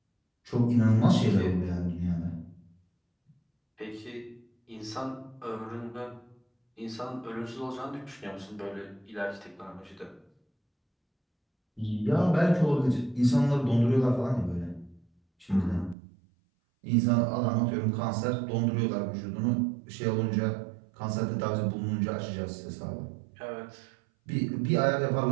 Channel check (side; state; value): left; drops out; at 16.0 s